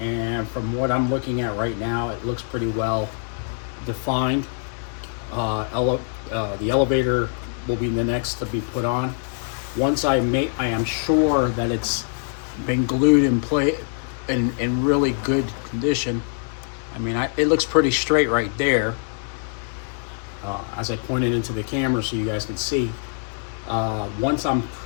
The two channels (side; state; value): right; silent; 63 dB below the other